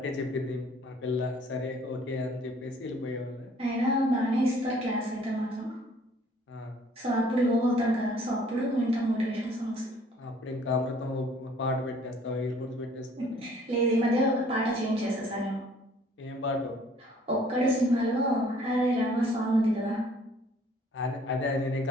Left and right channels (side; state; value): both; normal; correlation 0.58